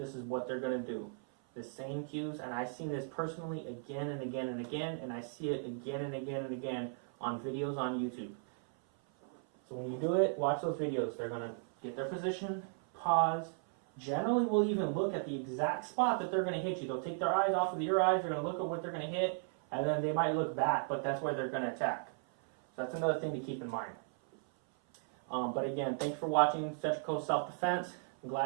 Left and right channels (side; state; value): left; silent; 54 dB below the other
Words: is what they're going to do. The same cues, and I've seen this personally again and again and again, and I see it again and again and again on videos on YouTube. So when you do it, watch those videos. They're going to get their position, pause. Generally, we'll even look at the exact spot that they're going to hit you. They'll take their eyes off of your eyes, they're going to look at what they're going to hit, and then they might look back, but that's where they're going to attack. So that's another thing to keep in mind. But again, thanks for watching Central Coast Self-Defense. I'm